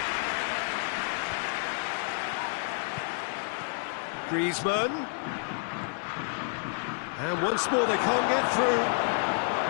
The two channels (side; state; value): right; silent; 58 dB below the other